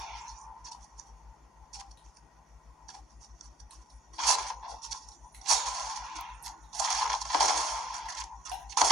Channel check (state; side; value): normal; both; correlation 0.61